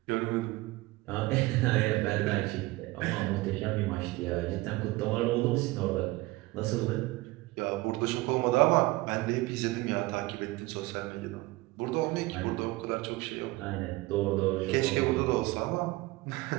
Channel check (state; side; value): quieter; left; 20.5 dB